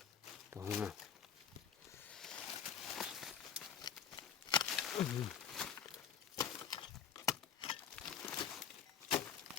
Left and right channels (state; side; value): quieter; right; 7.9 dB